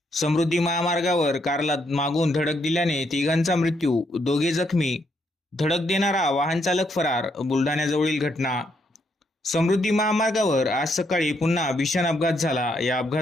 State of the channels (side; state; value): both; normal; correlation 0.75